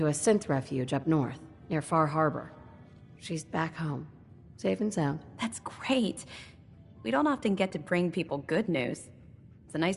a synth refuge up north, near Far Harbor. She's back home, safe and sound. That's great. We don't often get to bring people good news. It's a nice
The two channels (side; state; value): both; identical; correlation 1.00